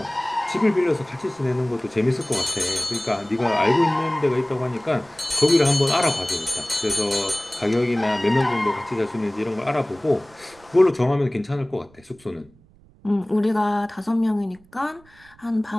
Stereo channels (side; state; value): right; noise; rumble, 28 dB below the sound